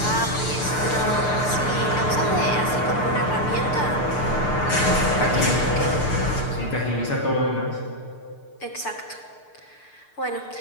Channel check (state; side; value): late; right; 6.7 ms